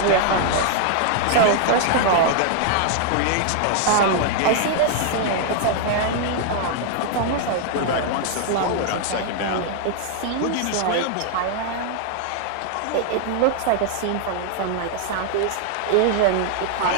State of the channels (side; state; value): both; different; correlation 0.00